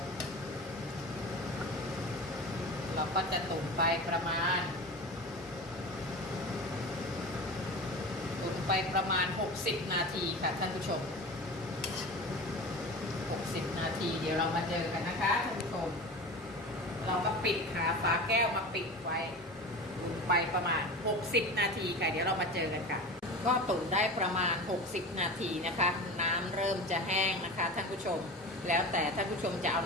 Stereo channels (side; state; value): both; normal; correlation 0.31